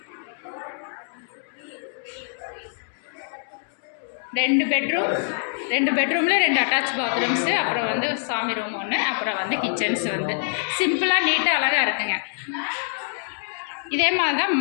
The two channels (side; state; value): right; silent; digital silence